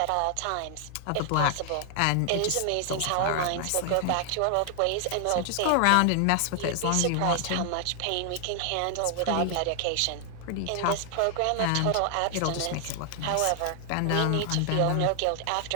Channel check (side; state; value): both; different; correlation 0.00